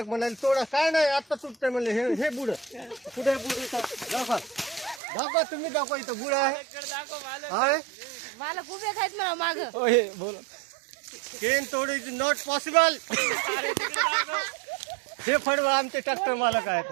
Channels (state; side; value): drops out; left; at 5.0 s